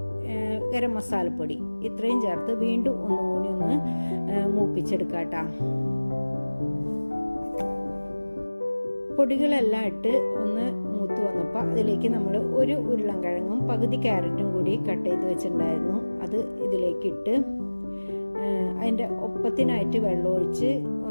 ഗരം മസാലപ്പൊടി ഇത്രയും ചേർത്ത് വീണ്ടും ഒന്നുകൂടി ഒന്ന് മൂപ്പിച്ചെടുക്കാം കേട്ടോ. പൊടികളെല്ലാം ഇട്ട് ഒന്ന് മൂത്ത് വന്നപ്പോൾ അതിലേക്ക് നമ്മൾ ഒരു ഉരുളൻകിഴങ്ങും പകുതി ക്യാരറ്റും കൂടി കട്ട് ചെയ്ത് വെച്ചിട്ടുണ്ടായിരുന്നു. അത് ഇതിലേക്ക് ഇട്ട് അതിൻ്റെ ഒപ്പത്തിനായിട്ട് വെള്ളമൊഴിച്ച്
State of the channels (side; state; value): both; inverted; correlation -1.00